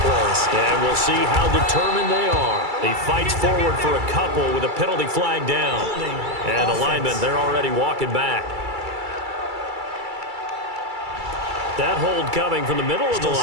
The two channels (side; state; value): left; late; 2.3 ms